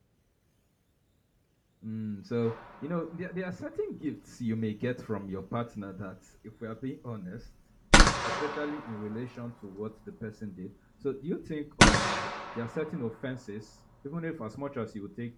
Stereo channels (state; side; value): identical; both; correlation 1.00